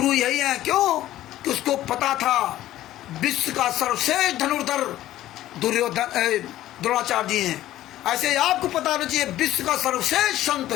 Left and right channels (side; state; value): right; quieter; 14.1 dB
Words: यही हैं। क्यों? कि उसको पता था विश्व का सर्वश्रेष्ठ धनुर्धर द्रोणाचार्य जी हैं। ऐसे आपको पता होना चाहिए विश्व का सर्वश्रेष्ठ संत